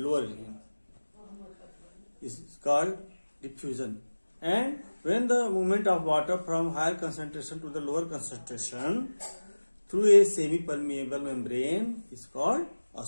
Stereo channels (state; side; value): inverted; both; correlation -1.00